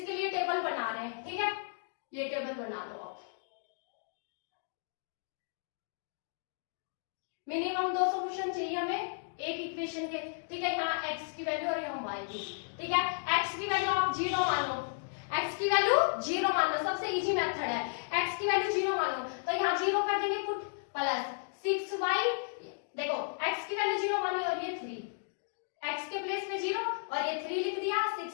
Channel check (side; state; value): right; silent; digital silence